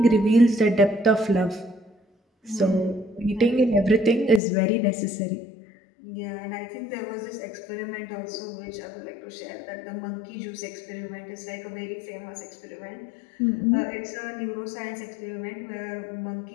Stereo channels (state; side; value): drops out; right; at 4.4 s